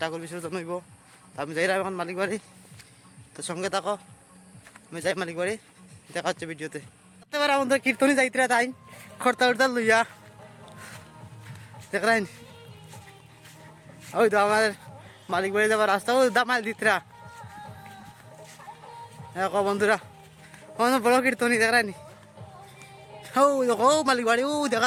ঠাকুর বিসর্জন হইব। তো আমি যাই এখন মালিক বাড়ি, তো সঙ্গে থাকো, আমি যাই মালিক বাড়ি, দেখা হচ্ছে ভিডিওতে। এবার আমাদের কীর্তনই যাইতে তাই খরতা উর্তা লইয়া দেখলেন, ওই তো আমার মালিক বাড়ি যাবার রাস্তা ওই দামাল দিতরা। হ্যাঁ বন্ধুরা, বড় কীর্তনী দেখানি, ও মালিক বাড়ি ও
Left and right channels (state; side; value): identical; both; correlation 1.00